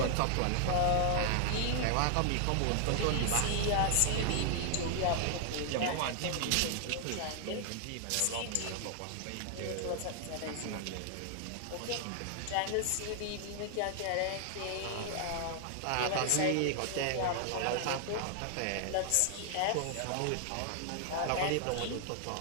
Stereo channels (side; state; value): both; different; correlation 0.00